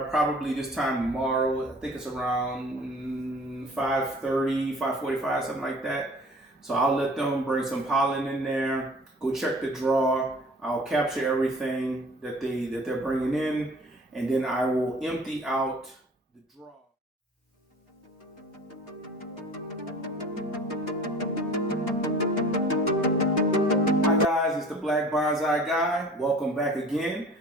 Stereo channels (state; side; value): normal; both; correlation 0.46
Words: probably this time tomorrow. I think it's around 5:30, 5:45, something like that. So I'll let them bring some pollen in there, go check the draw. I'll capture everything that they're bringing in, and then I will empty out the draw. Hi guys, it's the Black Bonsai Guy. Welcome back again.